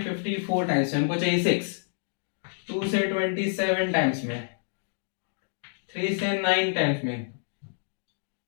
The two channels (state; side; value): silent; right; digital silence